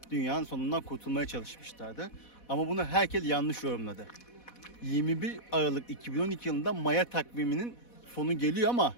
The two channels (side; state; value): right; late; 4.1 ms